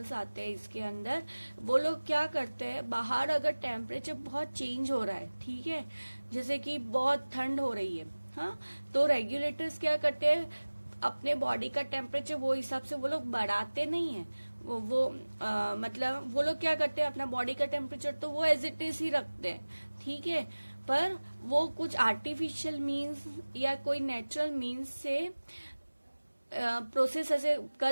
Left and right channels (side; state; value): both; inverted; correlation -1.00